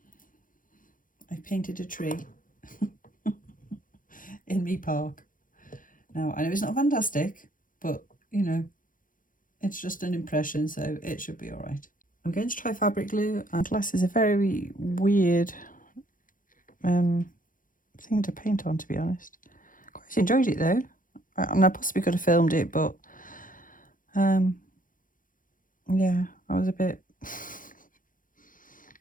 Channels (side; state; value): right; late; 0.39 ms